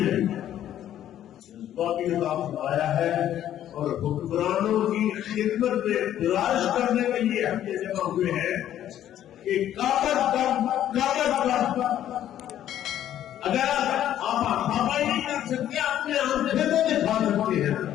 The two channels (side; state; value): right; quieter; 11.5 dB